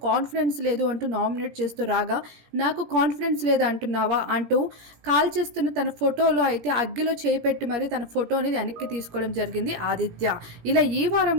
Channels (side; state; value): left; late; 17 ms